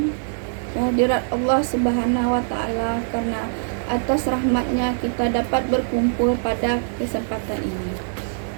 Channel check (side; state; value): left; silent; digital silence